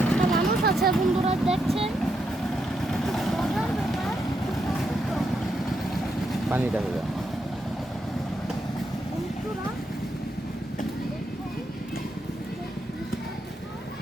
একটা মানুষ আছে বন্ধুরা দেখছেন। মজার ব্যাপার পানিটা হবে বন্ধুরা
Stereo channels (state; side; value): normal; both; correlation 0.81